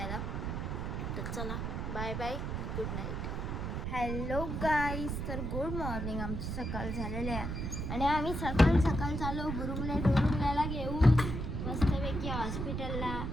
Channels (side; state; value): right; noise; rumble, 3 dB below the sound